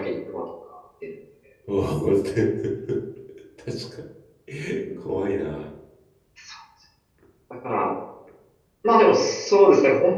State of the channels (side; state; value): both; identical; correlation 1.00